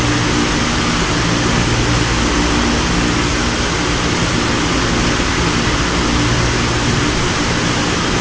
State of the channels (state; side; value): identical; both; correlation 1.00